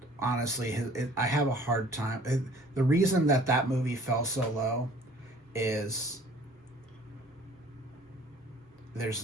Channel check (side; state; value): both; normal; correlation 0.52